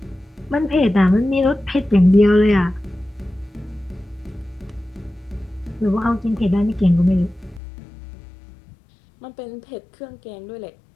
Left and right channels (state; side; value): drops out; right; at 7.6 s